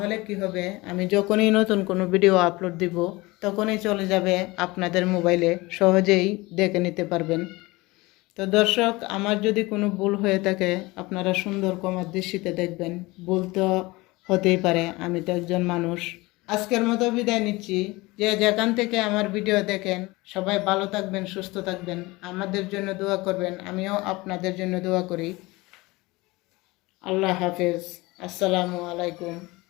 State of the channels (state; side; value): quieter; right; 22.1 dB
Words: কি হবে, আমি যখনই নতুন কোনো ভিডিও আপলোড দিব তখনই চলে যাবে আপনাদের মোবাইলে, সহজেই দেখে নিতে পারবেন। তো দর্শক, আমার যদি কোনো ভুল হয়ে থাকে আপনারা সুন্দর কমার দৃষ্টিতে দেখবেন। ভুল তো হতেই পারে, আমি তো একজন মানুষ। আজকের মতো বিদায় নিচ্ছি। যে যেখান থেকে আমার ভিডিও দেখেন সবাই ভালো থাকবেন, সুস্থ থাকবেন, আমাদের জন্য দোয়া করবেন। আমিও আপনাদের জন্য দোয়া করি। আল্লাহ হাফেজ, আসসালামু আলাইকুম।